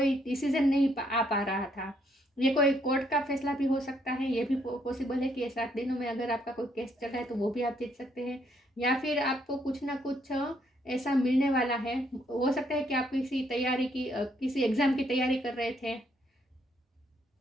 डिसीजन नहीं आ पा रहा था, ये कोई कोर्ट का फैसला भी हो सकता है, ये भी पॉसिबल है कि 7 दिनों में अगर आपका कोई केस चल रहा है तो वो भी आप जीत सकते हैं, या फिर आपको कुछ ना कुछ ऐसा मिलने वाला है। हो सकता है कि आप किसी तैयारी की किसी एग्ज़ाम की तैयारी कर रहे थे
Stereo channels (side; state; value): both; normal; correlation 0.71